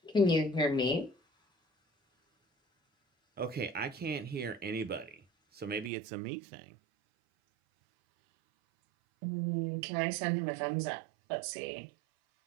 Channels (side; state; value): left; drops out; at 5.9 s